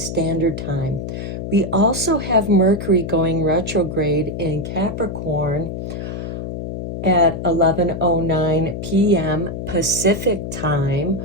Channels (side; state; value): left; noise; hum, 6 dB below the sound